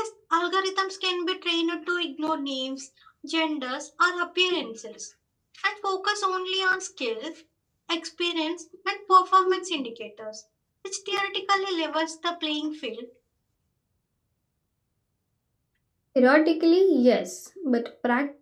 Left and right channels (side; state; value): both; identical; correlation 1.00